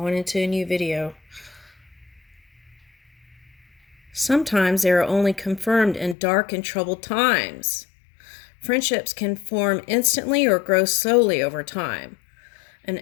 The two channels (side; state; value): right; drops out; at 6.2 s